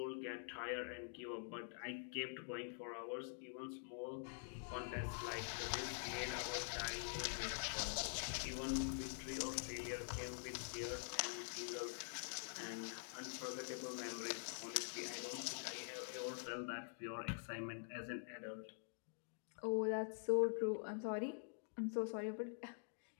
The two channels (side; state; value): right; silent; digital silence